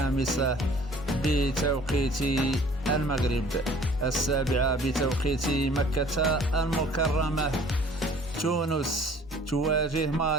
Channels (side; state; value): both; normal; correlation 0.53